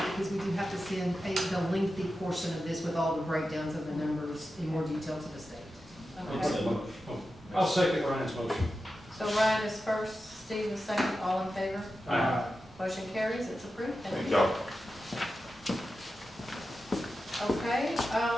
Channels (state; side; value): normal; both; correlation 0.91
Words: because we do have to send the lengthy portion of this with all the breakdowns of the numbers in more detail to the state. Okay. I'll second Ryan's motion. So Ryan is first, Steve is second, all in favor? Aye. Motion carries, it's approved. Thank Thank you. y'all. Okay, so